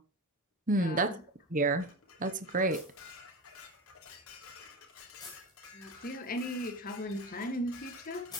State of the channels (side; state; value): both; normal; correlation 0.26